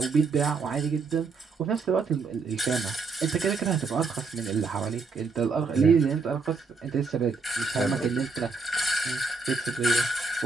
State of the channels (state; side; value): quieter; left; 4.4 dB